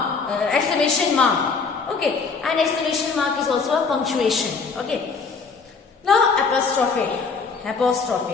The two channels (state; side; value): quieter; right; 4.9 dB